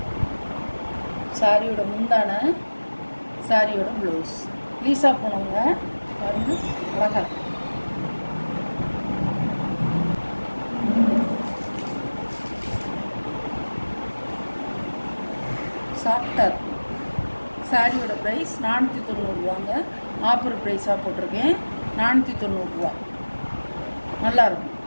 சாரியோட முந்தான, சாரியோட ப்ளவுஸ். லீசா போனவங்க பாருங்க, அழகா சாஃப்டாக இருக்கும். சாரியோட ப்ரைஸ் 490 ஆஃபர் ப்ரைஸாக போட்டிருக்கேன். 490 நல்லாயிருக்கும்.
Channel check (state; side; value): inverted; both; correlation -1.00